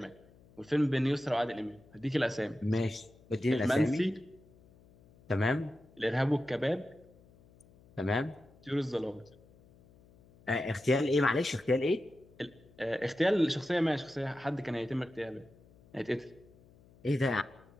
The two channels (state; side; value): noise; left; hum, 27 dB below the sound